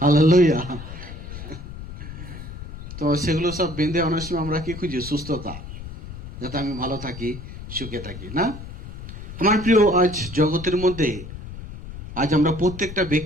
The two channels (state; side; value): noise; left; rumble, 11 dB below the sound